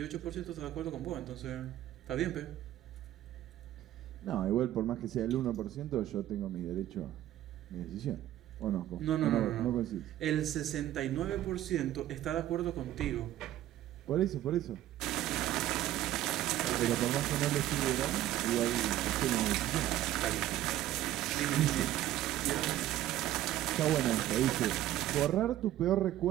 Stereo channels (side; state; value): left; quieter; 13.4 dB